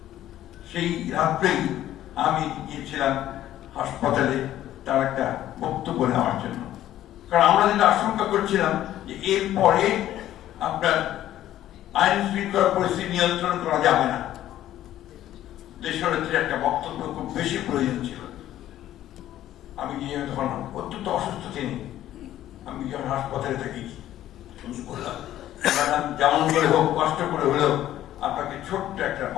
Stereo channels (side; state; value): right; quieter; 12.9 dB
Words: সেই রাত্রেই আমি গিয়েছিলাম হাসপাতালে তার একটা বক্তব্য নেওয়ার জন্য। কারণ আমরা যেটা আশঙ্কা করছিলাম যে এরপরে আপনার আইন শৃঙ্খলা পরিস্থিতি নিয়ন্ত্রণ করা যাবে না, দেশনেত্রীর একটা বক্তব্য খুব বেশি প্রয়োজন ছিল। আমি গিয়ে তখন অত্যন্ত অসুস্থ তিনি, আমি যখন হাসপাতালে থাকি বললাম যেমন করে হোক, কষ্ট করে হলেও আপনাকে ছোট্ট একটা